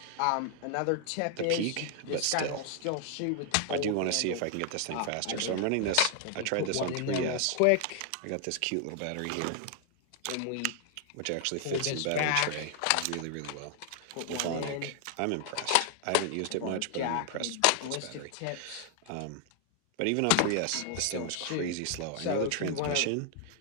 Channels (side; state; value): both; different; correlation 0.00